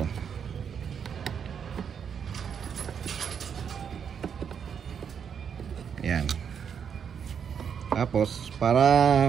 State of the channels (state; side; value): quieter; left; 7.4 dB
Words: Yan. Tapos para